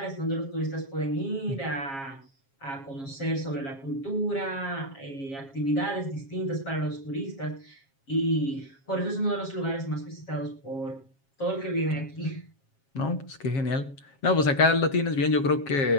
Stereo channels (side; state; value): right; late; 7.4 ms